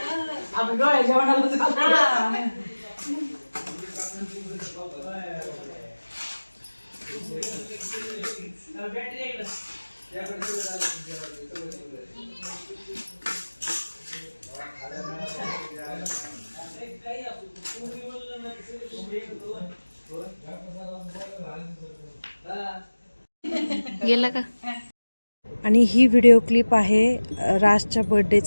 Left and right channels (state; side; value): inverted; both; correlation -1.00